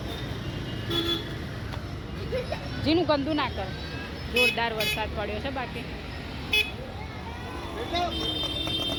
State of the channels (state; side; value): identical; both; correlation 1.00